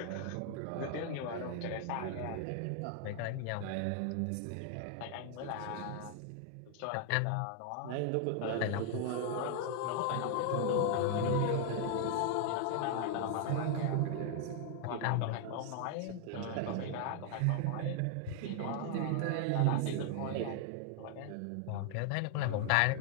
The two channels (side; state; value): both; different; correlation 0.00